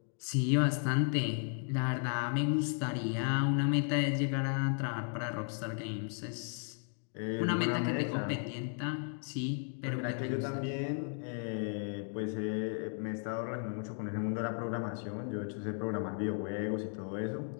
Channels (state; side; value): silent; right; 54 dB below the other